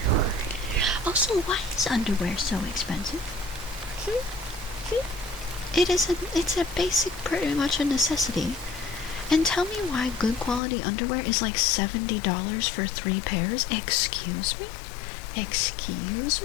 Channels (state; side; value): drops out; right; at 10.6 s